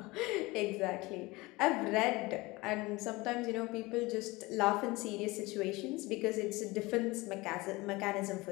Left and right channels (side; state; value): right; quieter; 22.2 dB